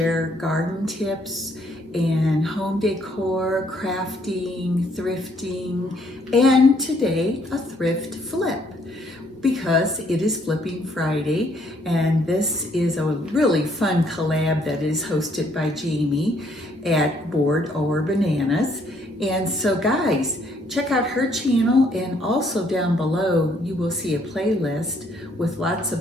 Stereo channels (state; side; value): normal; both; correlation 0.67